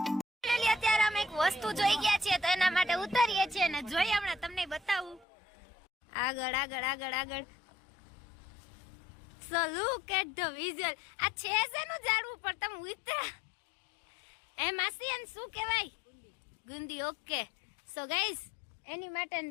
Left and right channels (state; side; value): drops out; right; at 5.2 s